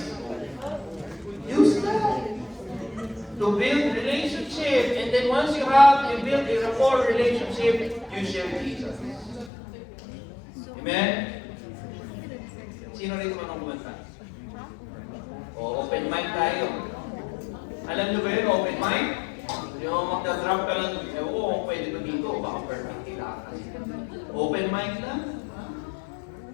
Use that to build relationship. And then once you build a rapport relationship, you share Jesus. Amen? Sino rin man ang kumanta? O, open mic tayo. Alam nyo ba yun, open mic? Yung magda-drop ka lang, oo, pwede ba dito? Baka perfect nila. Open mic lang.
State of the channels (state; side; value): drops out; right; at 9.5 s